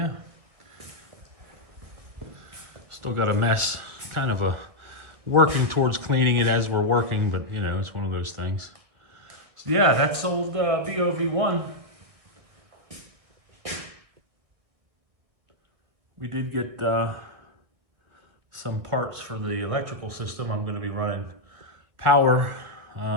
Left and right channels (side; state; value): left; late; 1.9 ms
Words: still got a mess, kind of working towards cleaning it as we're working, but you know, it's one of those things. So yeah, that's old BOV1. We did get some parts for the electrical system. I'm going to be running power